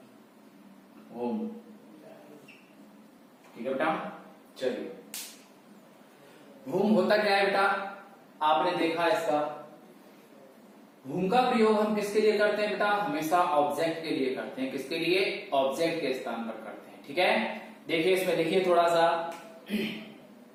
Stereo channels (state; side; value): identical; both; correlation 1.00